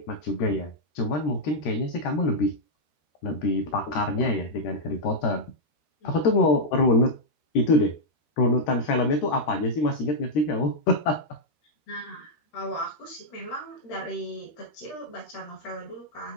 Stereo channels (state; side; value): late; right; 13 ms